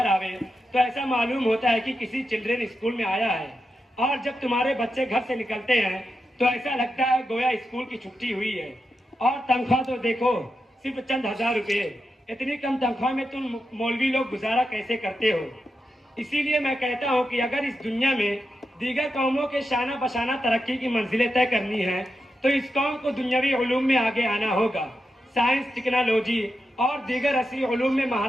آوے تو ایسا معلوم ہوتا ہے کہ کسی چلڈرن اسکول میں آیا ہے، اور جب تمہارے بچے گھر سے نکلتے ہیں تو ایسا لگتا ہے گویا اسکول کی چھٹی ہوئی ہے۔ اور تنخواہ تو دیکھو، صرف چند ہزار روپے۔ اتنی کم تنخواہ میں تم مولوی لوگ گزارا کیسے کرتے ہو؟ اسی لیے میں کہتا ہوں کہ اگر اس دنیا میں دیگر قوموں کے شانہ بشانہ ترقی کی منزلیں طے کرنی ہیں تو اس قوم کو دنیاوی علوم میں آگے آنا ہوگا۔ سائنس، ٹیکنالوجی اور دیگر عصری علوم میں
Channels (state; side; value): normal; both; correlation 0.88